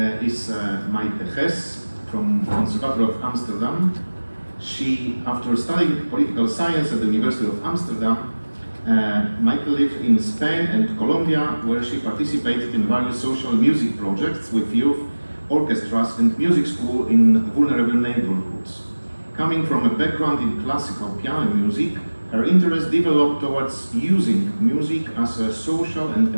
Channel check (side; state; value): both; inverted; correlation -1.00